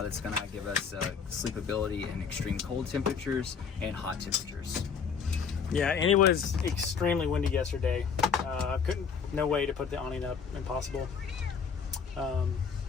going to give us sleepability in extreme cold temperatures and hot temperatures. Yeah, and it was extremely windy yesterday. No way to put the awning up. Impossible. And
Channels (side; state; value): right; quieter; 6.3 dB